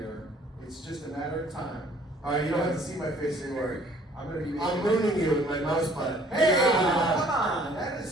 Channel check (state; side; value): normal; both; correlation 0.57